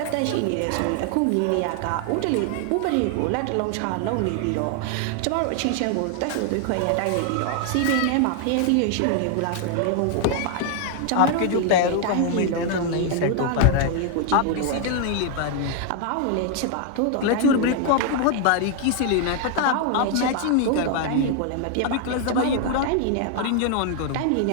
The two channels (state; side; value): different; both; correlation 0.00